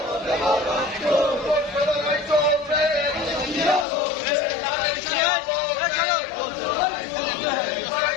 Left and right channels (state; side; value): drops out; right; at 3.9 s